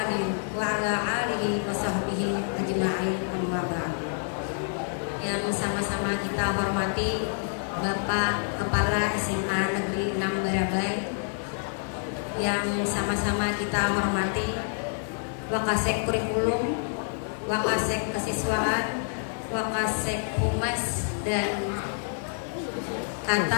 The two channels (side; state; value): right; silent; 60 dB below the other